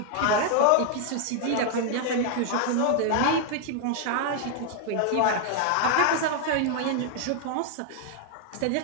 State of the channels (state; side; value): different; both; correlation 0.00